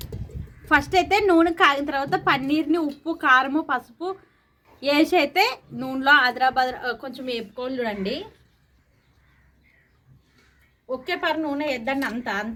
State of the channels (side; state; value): both; identical; correlation 1.00